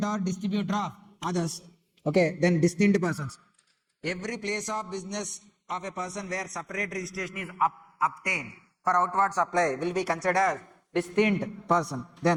or distributor of others. Okay, then distinct persons. Every place of business of a person where separate registration is obtained for outward supply will be considered as distinct person.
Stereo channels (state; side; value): identical; both; correlation 1.00